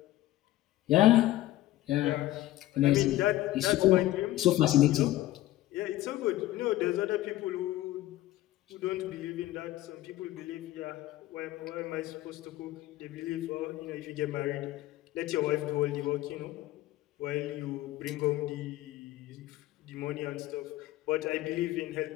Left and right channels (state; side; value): quieter; right; 15.5 dB